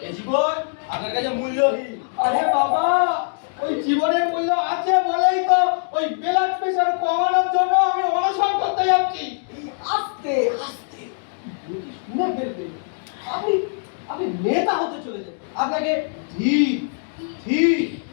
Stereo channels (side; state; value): right; silent; digital silence